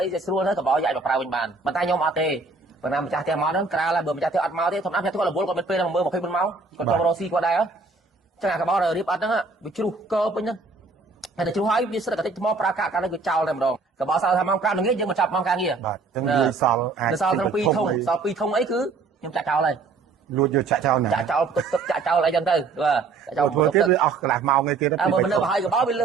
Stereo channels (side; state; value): left; quieter; 4.1 dB